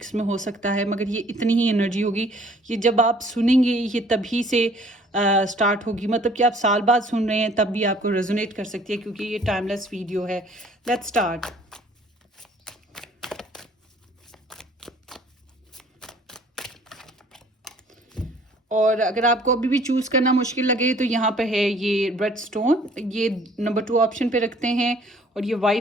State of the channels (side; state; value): both; normal; correlation 0.56